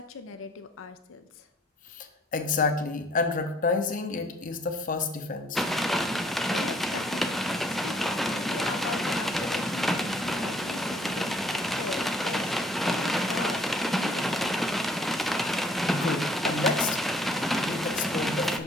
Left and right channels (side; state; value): both; normal; correlation 0.60